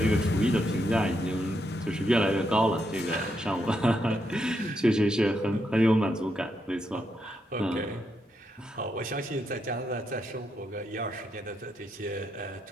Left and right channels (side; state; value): both; normal; correlation 0.80